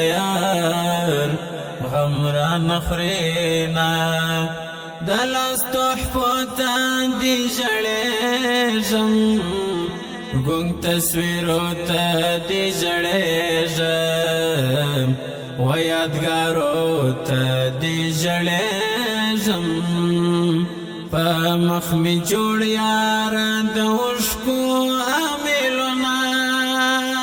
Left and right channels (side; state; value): both; identical; correlation 1.00